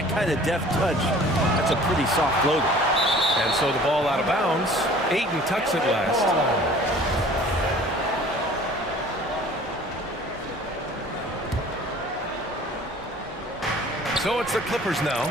kind of deft touch, that's a pretty soft floater. And so the ball out of bounds. Ayton tucks it last. So it's the Clippers now.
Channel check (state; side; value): normal; both; correlation 0.48